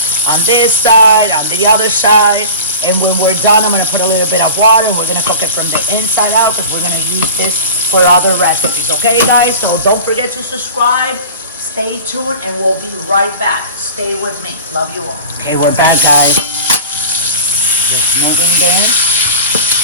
on the other side. And when we're done, I'm gonna put a little bit of water, and we're gonna cook it from the inside out because we're gonna use this for other recipes. Okay, guys? So don't forget to subscribe. Stay tuned, and we'll be right back. Stay with me. Love you all. Okay, we're back, guys. Just moving down.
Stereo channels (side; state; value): both; inverted; correlation -0.36